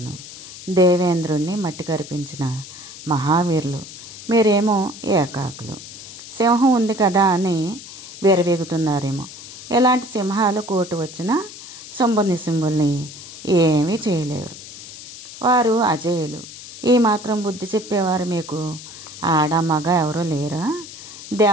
దేవేంద్రుణ్ణి మట్టి కరిపించిన మహావీరులు, మీరేమో ఏకాకులు. సింహం ఉంది కదా అని విరవీగుతున్నారేమో. ఎలాంటి సింహాలు కోటు వచ్చినా శుంభుల్ని ఏమీ చేయలేరు. వారు అజేయులు. ఈ మాత్రం బుద్ధి చెప్పేవారు మీకు ఆడ మగ ఎవరూ లేరా?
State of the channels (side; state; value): left; noise; hiss, 14 dB below the sound